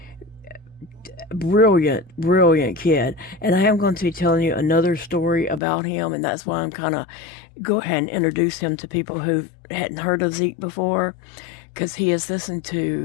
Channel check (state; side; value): drops out; right; at 5.6 s